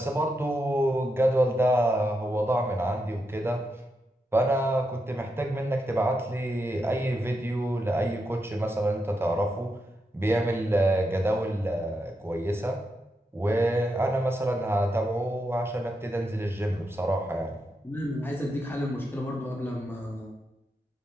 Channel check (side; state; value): both; normal; correlation 0.84